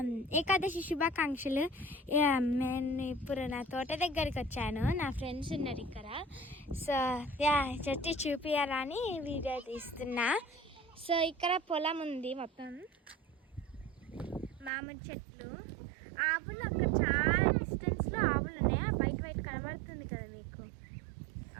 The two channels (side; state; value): left; drops out; at 14.7 s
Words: ఏకాదశి శుభాకాంక్షలు. నేను ఇప్పుడు నా తోట దగ్గరికి వచ్చాను. నా ఫ్రెండ్స్ ఉన్నారు ఇక్కడ. సో చెట్టు చూపించాలని వీడియో తీస్తున్నా. సో ఇక్కడ పొలం ఉంది, మొత్తం మామిడి చెట్లు, ఆవులు. అక్కడ చాలా డిస్టెన్స్లో ఆవులు ఉన్నాయి. వైట్ వైట్ కనబడుతుంది కదా మీకు